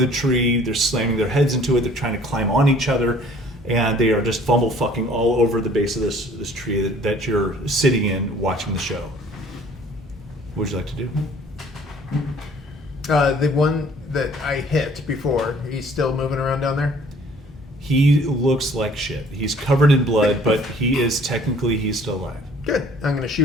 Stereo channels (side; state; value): both; normal; correlation 0.55